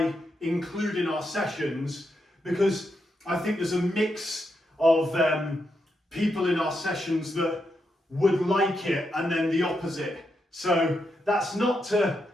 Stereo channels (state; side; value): normal; both; correlation 0.83